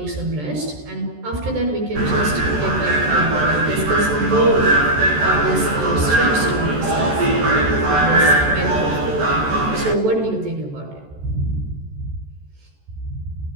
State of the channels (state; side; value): late; left; 14 ms